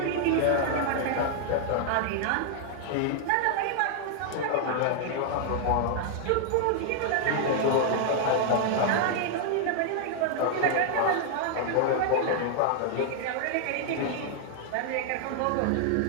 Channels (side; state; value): both; different; correlation 0.00